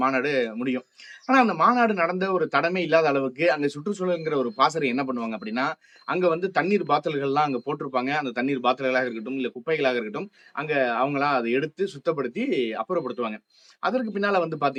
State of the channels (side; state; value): both; identical; correlation 1.00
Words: மாநாடு முடியும். ஆனா அந்த மாநாடு நடந்த ஒரு தடமே இல்லாத அளவுக்கு அங்க சுற்றுச்சூழல்ங்கிற ஒரு பாசறை என்ன பண்ணுவாங்க அப்படின்னா, அங்க வந்து தண்ணீர் பாட்டில்கள்லாம் அங்க போட்டிருப்பாங்க. அந்த தண்ணீர் பாட்டில்களாக இருக்கட்டும், இல்ல குப்பைகளாக இருக்கட்டும், அங்க அவங்களா அத எடுத்து சுத்தப்படுத்தி அப்புறப்படுத்துவாங்க. அதற்கு பின்னால வந்து